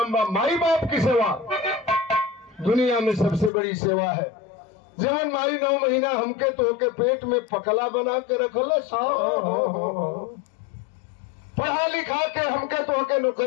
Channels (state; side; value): drops out; right; at 3.5 s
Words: बा। माई बाप की सेवा दुनिया में सबसे बड़ी सेवा है। जवन माई 9 महीना हमके तो के पेट में पकला बना के रखल पढ़ा लिखा के हमके तो के